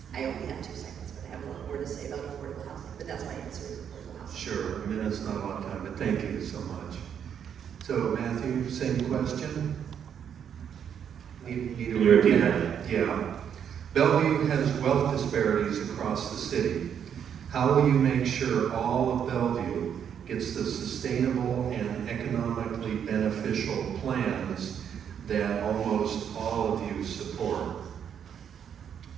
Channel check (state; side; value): quieter; left; 8.4 dB